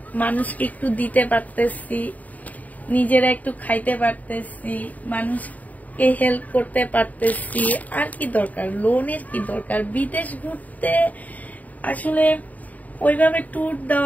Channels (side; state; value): right; late; 0.075 ms